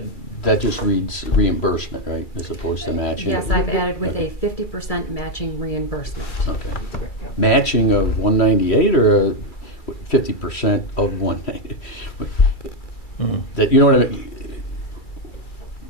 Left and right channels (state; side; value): late; right; 2.3 ms